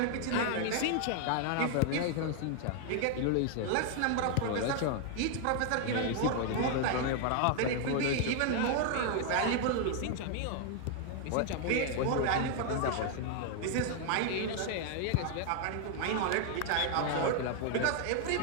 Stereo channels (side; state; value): both; different; correlation 0.00